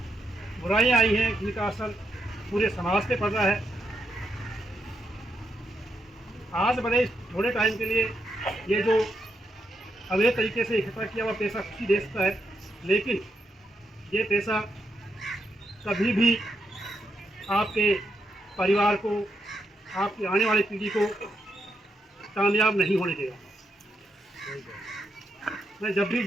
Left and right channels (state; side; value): normal; both; correlation 0.81